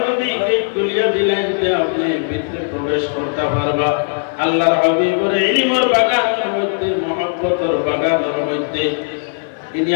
যদি গেট খুলিয়া দিলেন যে আপনি ভিতরে প্রবেশ করতে পারবা। আল্লাহর হাবিবের ইলমের বাগানের মধ্যে, মহব্বতের বাগানের মধ্যে,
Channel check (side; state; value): right; silent; 58 dB below the other